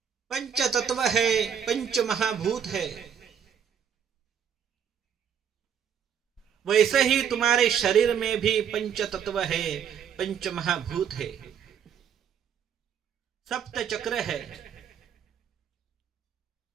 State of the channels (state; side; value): quieter; left; 8.1 dB